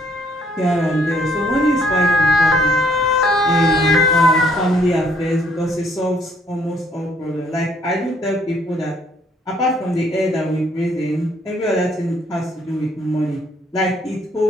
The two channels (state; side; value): normal; both; correlation 0.66